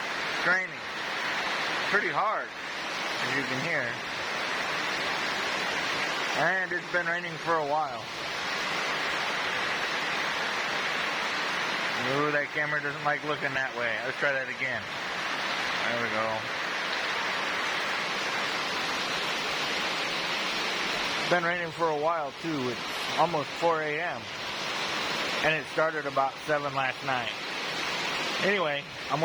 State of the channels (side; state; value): both; identical; correlation 1.00